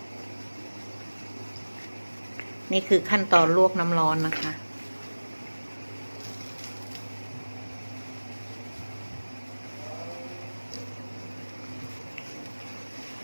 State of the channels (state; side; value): inverted; both; correlation -1.00